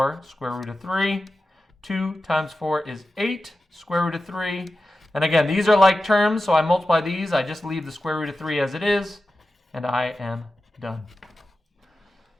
square root of 3. 2 times 4 is 8 square root of 3. And again, these are like terms, so I multiply these. I just leave the square root of 3 as it is, and I am done.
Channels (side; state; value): both; normal; correlation 0.93